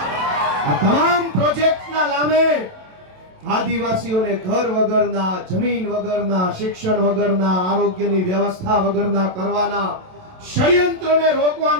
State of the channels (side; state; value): left; late; 27 ms